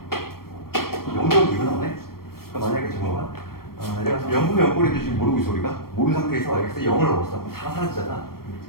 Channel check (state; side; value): late; right; 0.94 ms